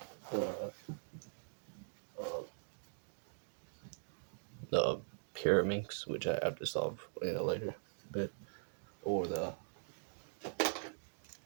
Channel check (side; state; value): left; silent; digital silence